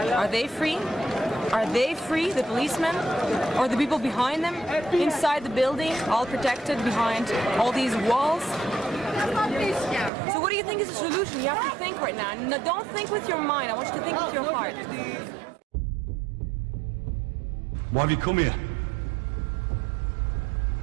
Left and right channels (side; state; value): left; drops out; at 10.1 s